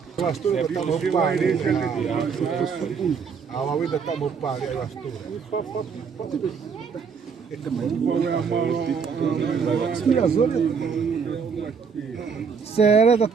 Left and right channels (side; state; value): left; quieter; 5.9 dB